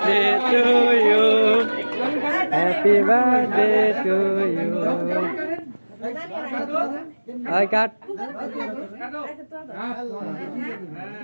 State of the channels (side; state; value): both; inverted; correlation -1.00